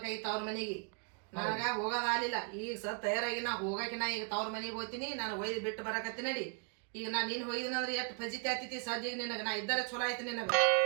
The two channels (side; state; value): left; quieter; 37.2 dB